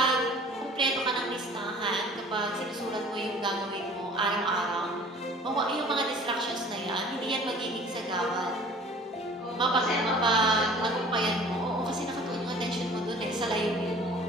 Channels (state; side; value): normal; both; correlation 0.48